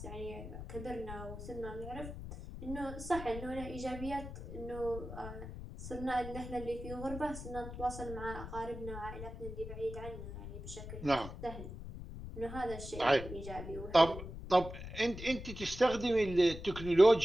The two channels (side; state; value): left; noise; rumble, 10 dB below the sound